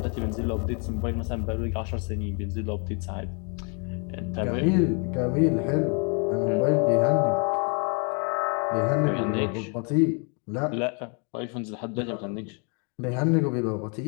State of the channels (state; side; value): quieter; right; 37.0 dB